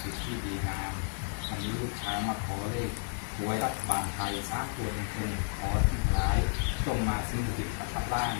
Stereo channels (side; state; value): right; silent; digital silence